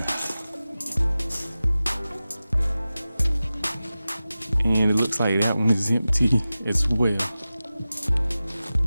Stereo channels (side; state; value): both; inverted; correlation -0.95